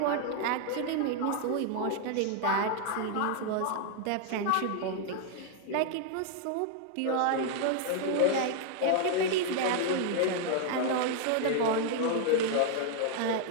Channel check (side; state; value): both; different; correlation 0.00